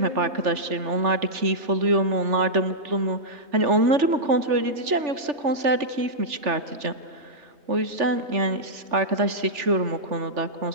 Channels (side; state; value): left; late; 3.4 ms